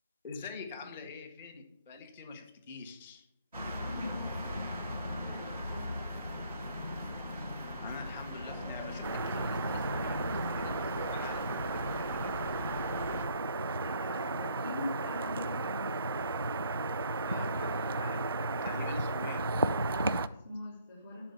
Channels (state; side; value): inverted; both; correlation -0.61